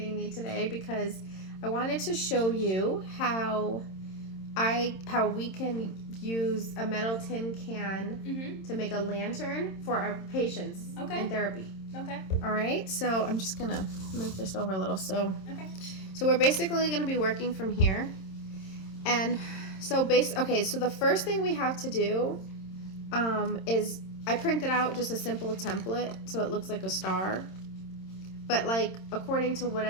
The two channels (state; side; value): late; right; 26 ms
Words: me today because I wanted to show you how we can use a metal tin can to make a lantern for our patients in therapy. Okay. All right. So I'm just gonna move this over a little. So Okay. we're basically gonna be working from here, and so so the first thing we have to do is I printed out just a simple template so it looks like a star. But like according to